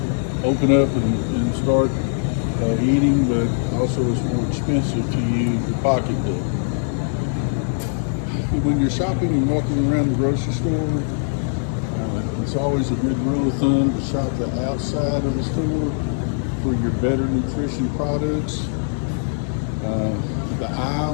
open up and start eating, but also it's more expensive to use your pocketbook. When you're shopping and walking around the grocery store, it's always a good rule of thumb to shop the outside of the store for your better nutrition products. The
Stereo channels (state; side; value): silent; right; digital silence